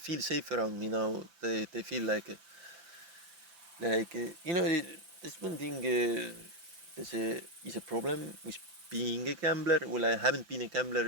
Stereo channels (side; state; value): left; late; 5.9 ms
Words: safe around me now. They feel like you know, there's one thing. Is a problem with being a gambler. Well, I haven't been a